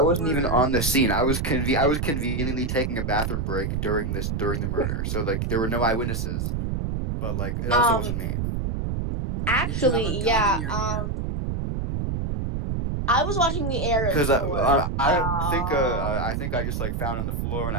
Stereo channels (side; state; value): right; noise; rumble, 1 dB below the sound